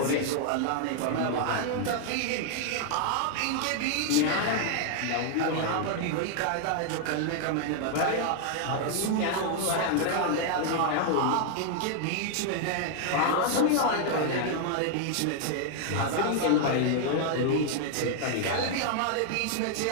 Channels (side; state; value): both; different; correlation 0.00